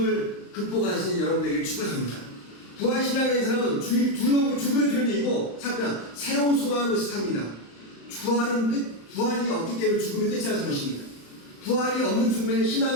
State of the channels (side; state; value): right; late; 35 ms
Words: 극복하시는 여러분에게 축복합니다. 부활신앙의 사람은 죽음을 두려움이고 사람은 새로운 소망을 삽니다. 부활이 없기 때문에 죽음이 끝이라는 것입니다. 부활이 없는 죽음에는